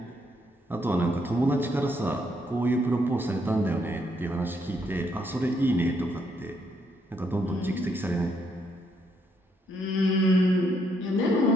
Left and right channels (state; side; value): normal; both; correlation 0.74